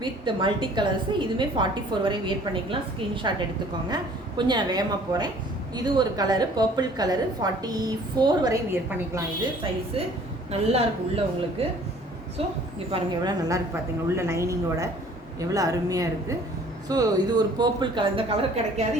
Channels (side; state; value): both; normal; correlation 0.53